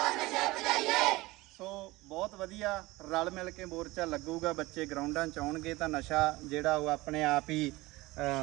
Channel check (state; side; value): quieter; left; 20.4 dB